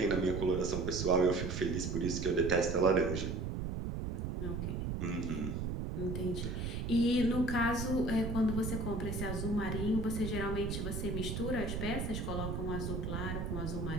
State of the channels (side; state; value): right; noise; rumble, 3 dB below the sound